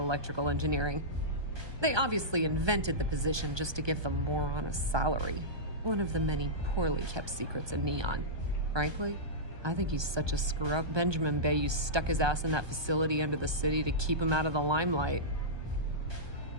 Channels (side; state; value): left; late; 1.2 ms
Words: engineering. They obviously invented the position just to give the moron a salary, one of the many poorly kept secrets in Neon. Frankly, I think he's such a screw-up. Benjamin Bayou stuck his ass in that facility under the city to keep him out of the limelight.